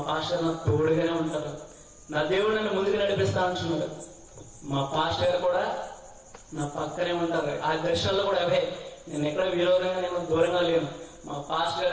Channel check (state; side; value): identical; both; correlation 1.00